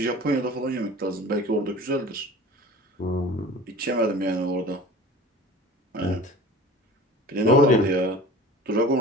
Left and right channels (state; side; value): normal; both; correlation 0.40